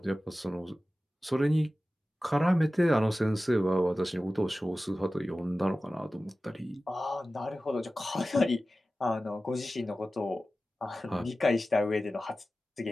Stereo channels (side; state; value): both; normal; correlation 0.95